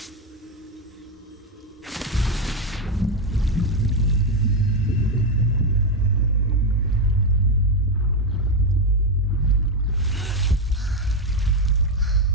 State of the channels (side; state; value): both; normal; correlation 0.07